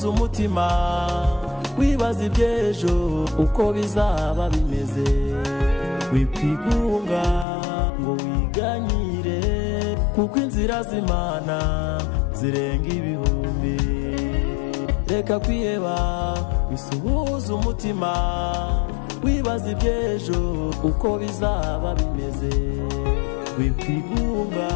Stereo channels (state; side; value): drops out; right; at 7.5 s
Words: umutima wibaza iby'ejo uko bizaba bimeze wikwigunga ngo wiganyire kuko inzira z'Imana zirenga ibihumbi reka kwiheba bisuhuza umutima wibaza iby'ejo uko bizaba bimeze wikwigunga